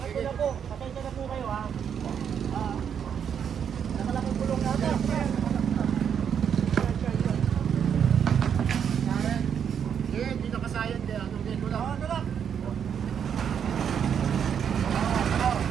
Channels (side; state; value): left; quieter; 8.0 dB